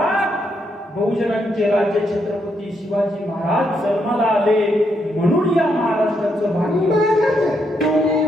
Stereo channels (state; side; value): normal; both; correlation 0.78